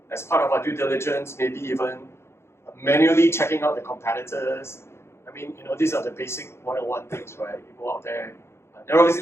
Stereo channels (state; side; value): late; right; 0.12 ms